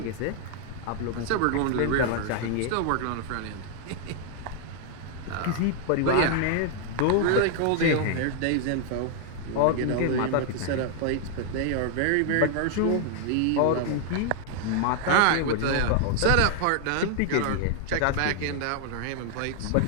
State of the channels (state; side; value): different; both; correlation 0.00